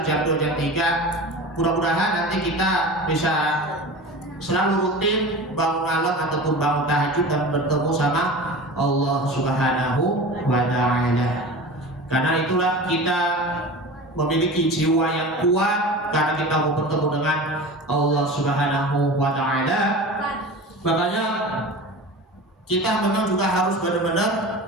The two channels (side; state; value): both; normal; correlation 0.33